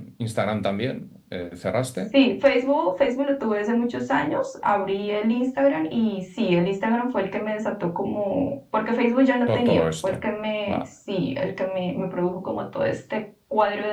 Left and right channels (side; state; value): both; identical; correlation 1.00